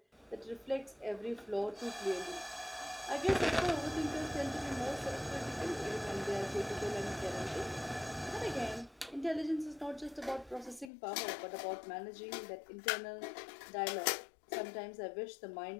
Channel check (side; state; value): right; drops out; at 10.9 s